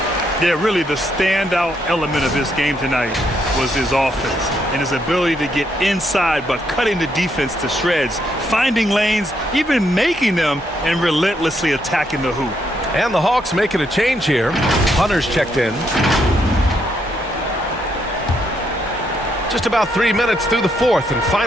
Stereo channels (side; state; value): both; normal; correlation 0.76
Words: Yeah, really the standout element of this game tonight was his offense and his ability to get inside but cutting the defense to shreds, finding lanes, even making them, and relentlessly attacking the hoop. And the Hawks making a change here. Hunter's checked in. Just about 3 minutes through the fourth and